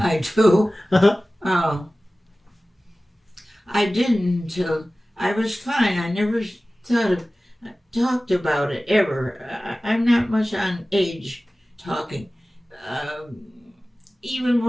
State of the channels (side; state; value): both; normal; correlation 0.97